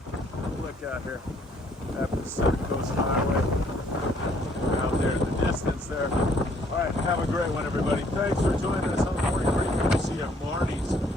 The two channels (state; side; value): normal; both; correlation 0.64